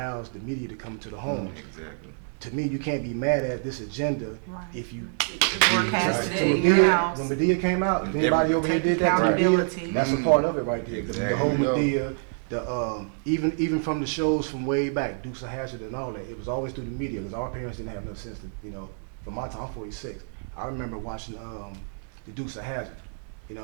the media to come to the homes. Exactly. To me, you can't be mad at this agenda if you Broadcast it in your house. When Medea came out, if anybody over here did that to Medea, that's a part of it right there. Exactly. The whole Medea, even from the shows from way back, Dukes of Hazzard and all that, it was always through the media, because our parents didn't have no sense to, you know, from my time, I'm 46. I remember watching the Dukes of Hazzard, you know,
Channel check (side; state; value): left; silent; digital silence